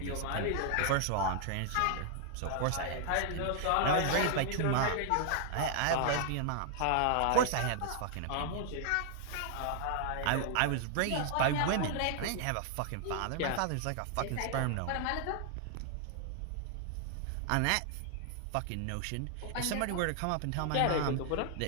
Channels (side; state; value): both; different; correlation 0.00